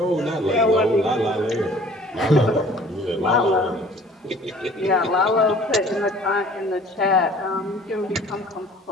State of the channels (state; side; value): normal; both; correlation 0.51